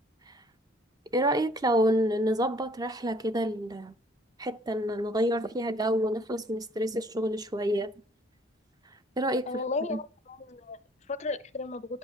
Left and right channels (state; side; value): normal; both; correlation 0.58